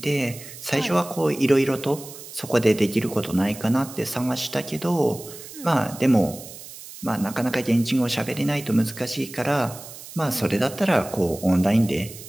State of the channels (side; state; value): right; noise; hiss, 15 dB below the sound